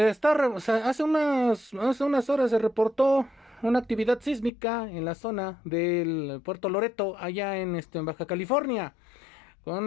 unas horas se reportó una actividad sísmica en la zona del Puerto Loreto, allá en Baja California, con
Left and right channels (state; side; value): drops out; right; at 4.5 s